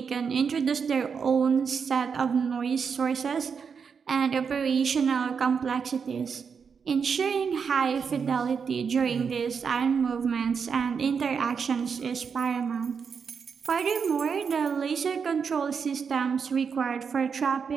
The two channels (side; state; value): left; quieter; 6.2 dB